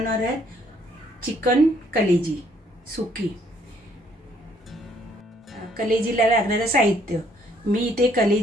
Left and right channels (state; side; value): normal; both; correlation 0.66